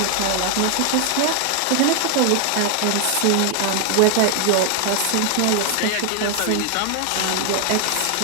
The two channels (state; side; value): different; both; correlation 0.00